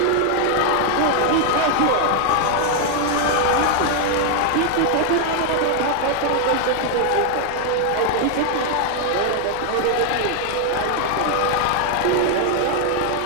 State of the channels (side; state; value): both; different; correlation 0.00